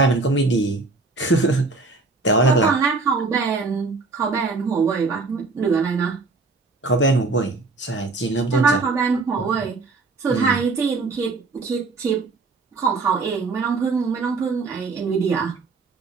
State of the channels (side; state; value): left; quieter; 3.8 dB